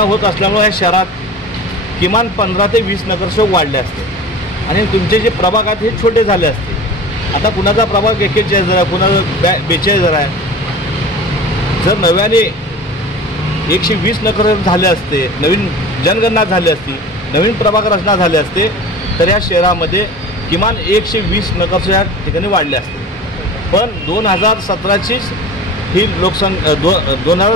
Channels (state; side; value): normal; both; correlation 0.37